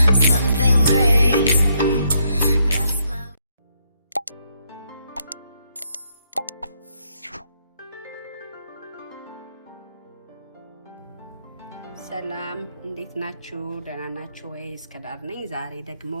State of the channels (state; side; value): inverted; both; correlation -0.75